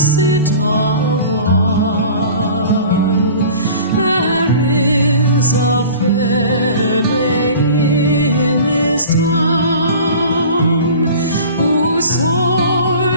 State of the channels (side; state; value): both; inverted; correlation -0.42